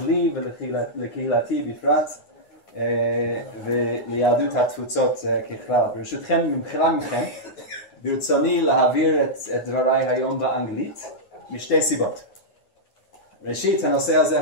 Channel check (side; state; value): right; late; 9.7 ms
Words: לי ולקהילתי בפרט וליהדות התפוצות ככלל. ברשותכם, במחילה מכם, ברצוני להעביר את דבריי היום באנגלית משתי סיבות. ראשית, הנושא